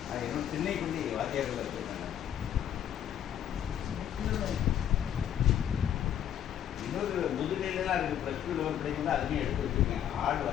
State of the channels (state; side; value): quieter; right; 10.0 dB